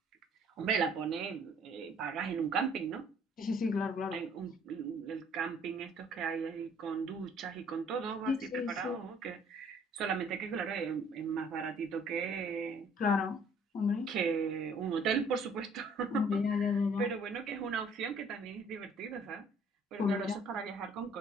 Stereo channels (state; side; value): normal; both; correlation 0.58